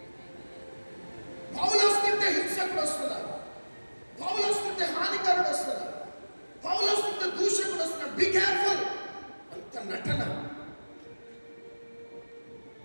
పౌలు వస్తుంటే హింసకుడు వస్తున్నాడు, పౌలు వస్తుంటే హానికరుడు వస్తున్నాడు, పౌలు వస్తుంటే దూషకుడు వస్తున్నాడు. Be careful. అంత నటన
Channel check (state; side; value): inverted; both; correlation -1.00